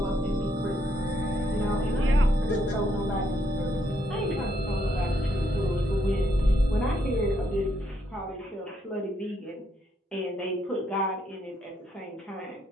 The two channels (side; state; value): both; normal; correlation 0.74